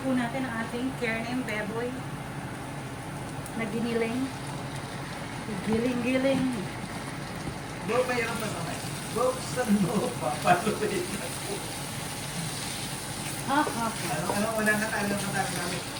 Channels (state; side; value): identical; both; correlation 1.00